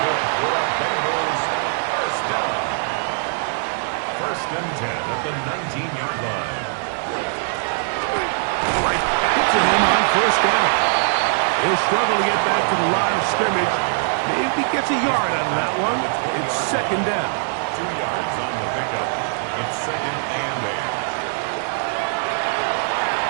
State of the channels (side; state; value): left; silent; 65 dB below the other